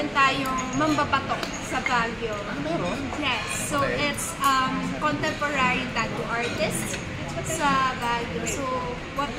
tayong mambapatok sa Baguio. Meron? Yes. So it's contemporary tattoo artist. sa Baguio. So what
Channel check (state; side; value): identical; both; correlation 1.00